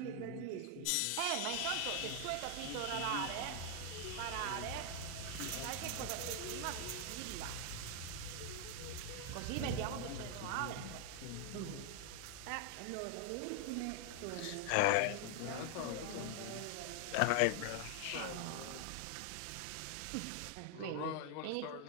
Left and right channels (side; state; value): both; different; correlation 0.00